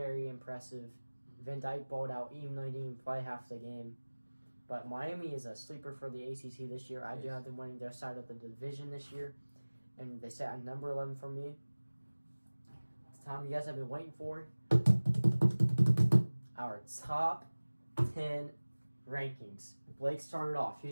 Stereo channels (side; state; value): both; inverted; correlation -1.00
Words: impressive. Van Dyke balled out even though he didn't even play half the game. But Miami is a sleeper for the ACC this year. I do have them winning their side of the division this year. And they sit at number 11 for me. It's the time you guys have been waiting for. Our top 10 rankings. Blake started off.